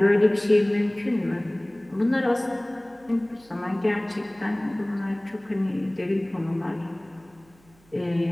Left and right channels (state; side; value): noise; right; hum, 30 dB below the sound